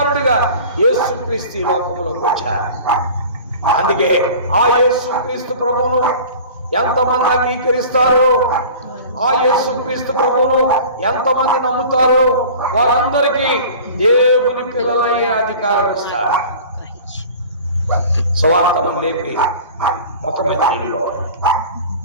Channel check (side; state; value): both; inverted; correlation -0.41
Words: యేసుక్రీస్తు ఈ లోకంలోకి వచ్చారు. అందుకే ఆ యేసుక్రీస్తు ప్రభువును ఎంతమంది అంగీకరిస్తారో, ఆ యేసుక్రీస్తు ప్రభువును ఎంతమంది నమ్ముతారో వారందరికీ దేవుని పిల్లలయ్యే అధికారం ఇస్తారు. సువార్తను లేపి ముఖం మీద నీళ్ళు.